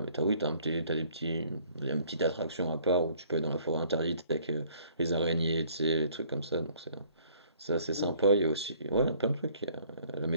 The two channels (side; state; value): both; inverted; correlation -0.59